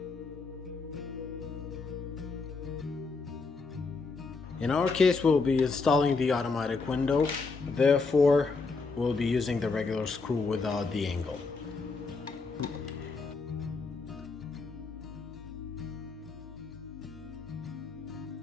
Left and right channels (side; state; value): right; quieter; 4.2 dB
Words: In our case, we'll be installing the automatic window, therefore we'll be using the regular screw without the angle.